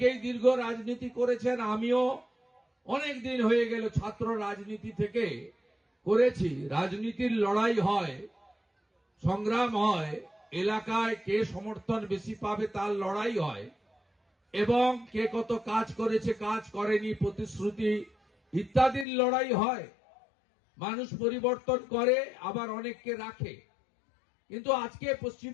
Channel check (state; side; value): drops out; right; at 19.1 s